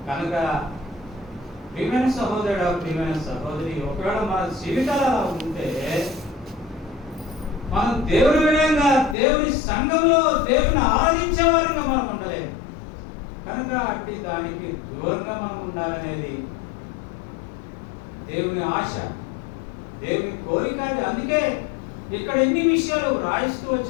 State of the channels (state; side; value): drops out; right; at 9.2 s